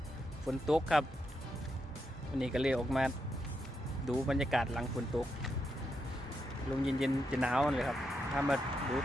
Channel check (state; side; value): normal; both; correlation 0.83